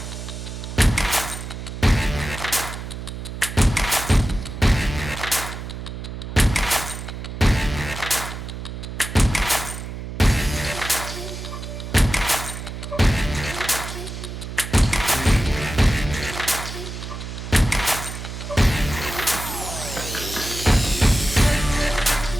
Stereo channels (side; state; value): right; noise; hum, 8 dB below the sound